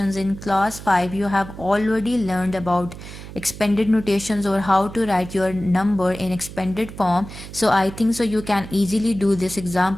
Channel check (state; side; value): noise; right; hum, 13 dB below the sound